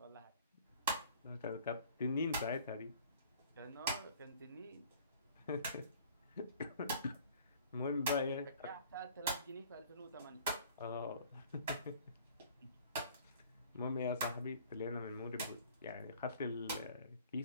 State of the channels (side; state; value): both; inverted; correlation -0.51